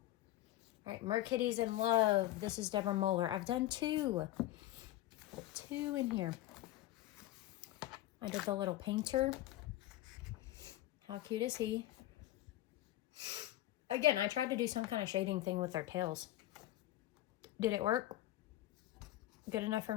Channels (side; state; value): right; quieter; 15.0 dB